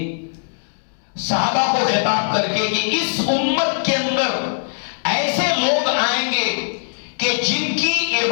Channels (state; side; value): silent; right; digital silence